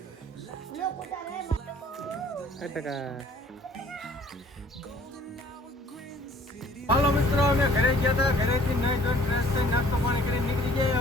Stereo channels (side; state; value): both; normal; correlation 0.55